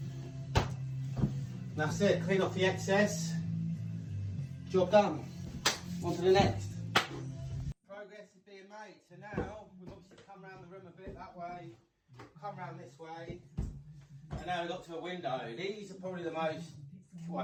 That's it, clean off the excess. Job done. On to the next. Progress is being made. So now we've obviously come around the room a bit that way, come around this way, and now we've got to a window. These are probably the most,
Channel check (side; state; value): both; identical; correlation 1.00